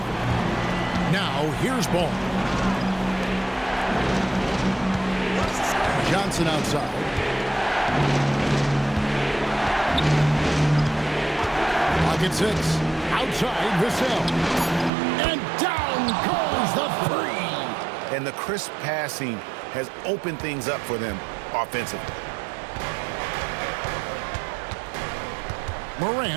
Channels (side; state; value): left; drops out; at 14.9 s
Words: Now, here's Ball. Johnson outside. Pocket 6. Outside, Vassell. And down goes the three. And the crisp passing has opened things up for them offensively.